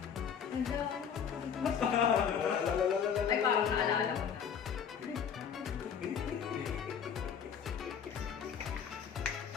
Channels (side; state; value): right; quieter; 7.6 dB